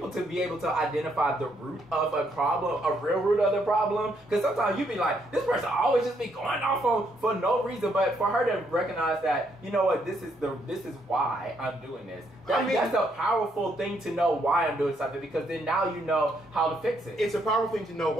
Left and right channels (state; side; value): normal; both; correlation 0.73